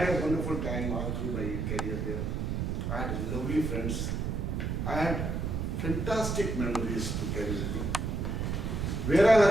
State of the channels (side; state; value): right; noise; rumble, 1 dB below the sound